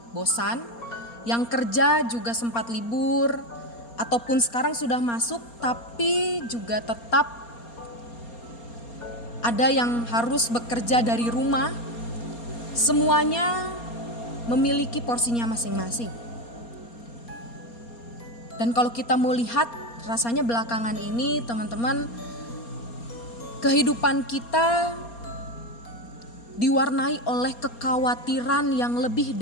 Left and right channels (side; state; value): right; late; 4.3 ms